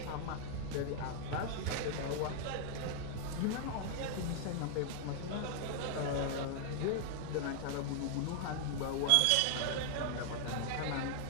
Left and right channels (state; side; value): different; both; correlation 0.00